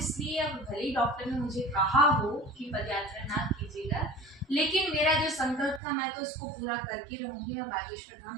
अब भले ही डॉक्टर ने मुझे कहा हो कि पद यात्रा ना कीजिएगा, लेकिन मेरा जो संकल्प था मैं तो उसको पूरा करके रहूंगी। मैं बागेश्वर धाम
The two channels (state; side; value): drops out; left; at 5.8 s